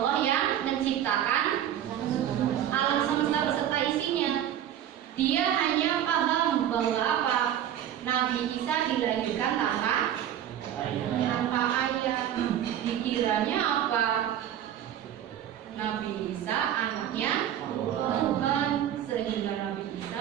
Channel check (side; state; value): left; quieter; 10.7 dB